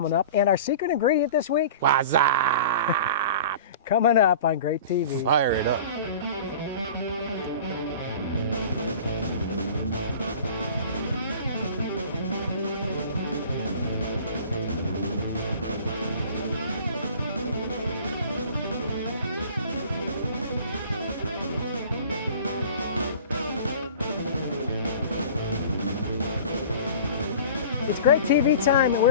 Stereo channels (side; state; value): both; inverted; correlation -0.41